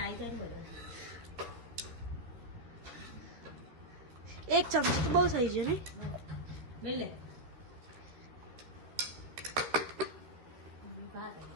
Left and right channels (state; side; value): late; left; 13 ms